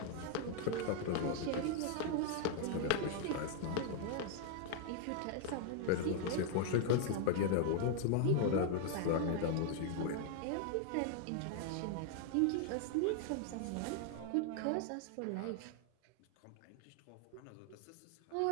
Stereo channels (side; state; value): both; different; correlation 0.00